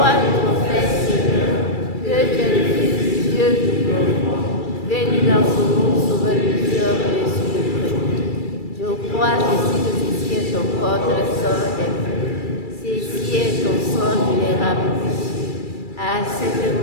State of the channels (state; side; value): late; right; 2.3 ms